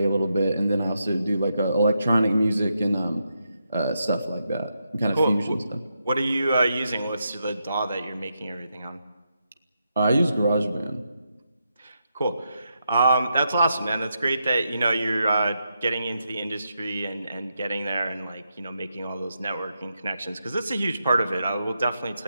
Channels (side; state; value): both; inverted; correlation -0.83